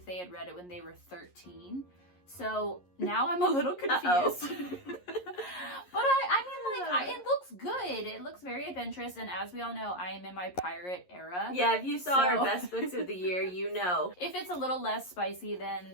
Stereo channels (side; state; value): right; late; 11 ms